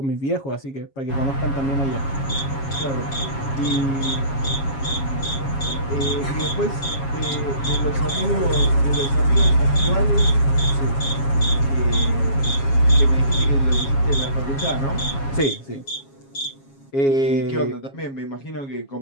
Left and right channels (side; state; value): right; late; 7.3 ms